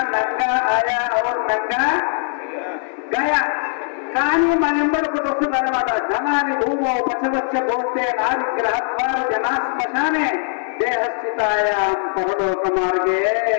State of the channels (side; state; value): right; silent; 66 dB below the other